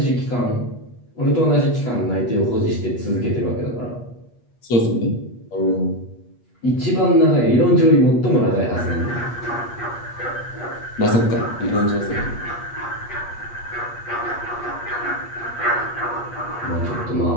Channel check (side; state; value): right; late; 8.3 ms